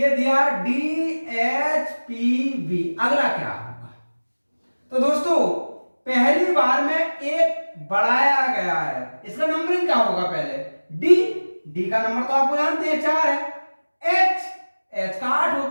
दिया DHPV, अगला क्या होगा? तो दोस्तों पहली बार में एक बढ़ाया गया है, इसका नंबरिंग क्या होगा? पहले D का नंबर तो आपको जानते हैं 4 है, H का 8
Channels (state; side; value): inverted; both; correlation -1.00